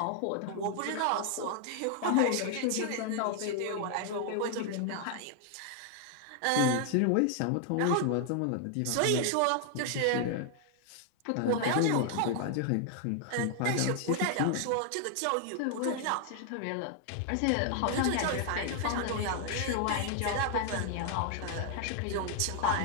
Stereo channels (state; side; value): different; both; correlation 0.00